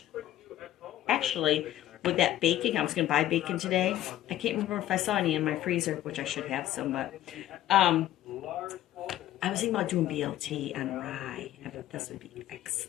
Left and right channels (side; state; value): right; quieter; 13.5 dB